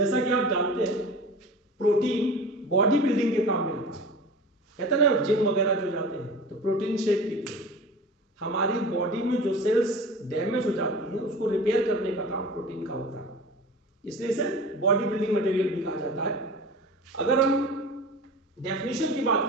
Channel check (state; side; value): normal; both; correlation 0.36